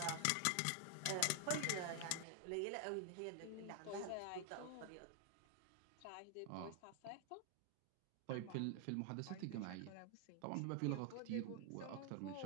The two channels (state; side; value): different; both; correlation 0.00